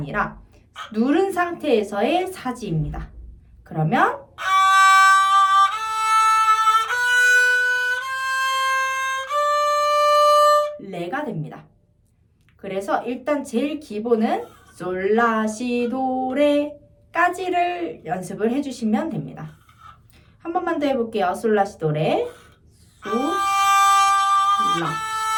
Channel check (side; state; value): both; identical; correlation 1.00